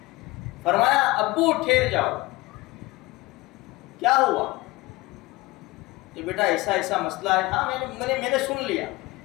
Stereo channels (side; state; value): right; quieter; 20.7 dB